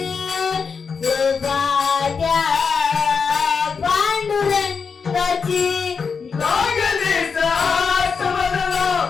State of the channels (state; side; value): quieter; right; 5.6 dB